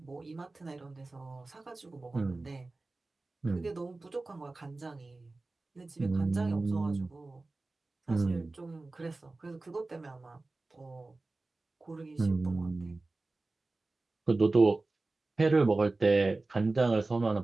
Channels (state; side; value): quieter; left; 3.3 dB